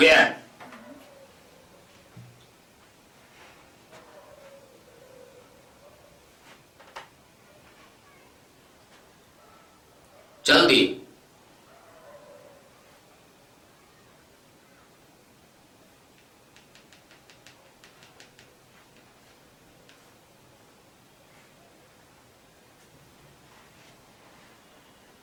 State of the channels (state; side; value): identical; both; correlation 1.00